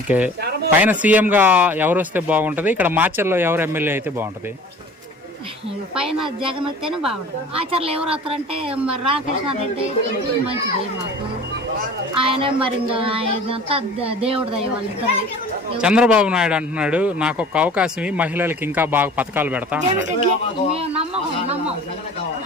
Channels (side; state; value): both; normal; correlation 0.44